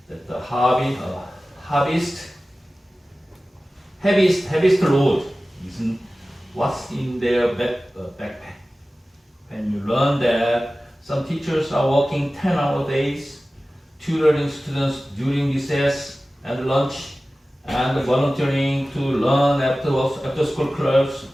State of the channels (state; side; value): normal; both; correlation 0.96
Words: that the heaviest load isn't what's in their backpack. When you learn that some teachers are working 10-hour days, tutoring students during recess and lunch, and volunteering to learn after school clubs